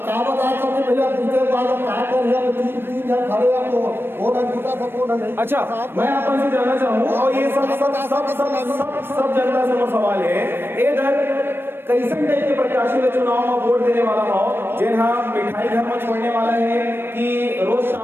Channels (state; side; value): late; left; 0.10 ms